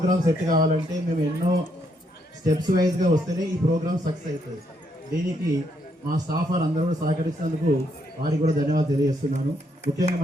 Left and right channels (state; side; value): normal; both; correlation 0.75